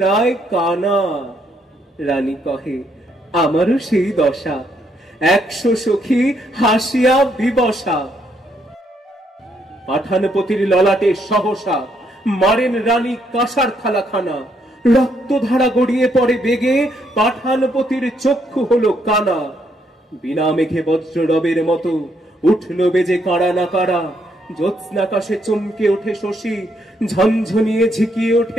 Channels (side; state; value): both; normal; correlation 0.73